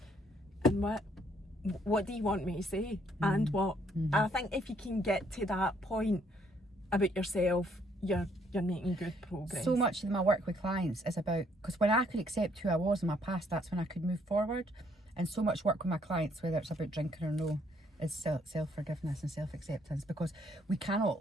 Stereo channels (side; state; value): both; normal; correlation 0.68